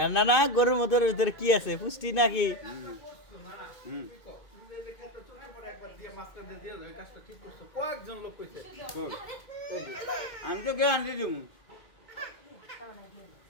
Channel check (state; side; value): late; right; 2.1 ms